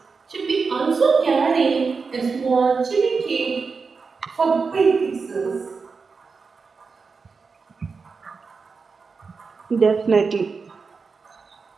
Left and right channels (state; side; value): quieter; left; 4.9 dB